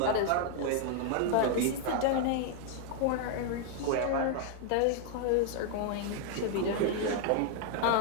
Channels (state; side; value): different; both; correlation 0.00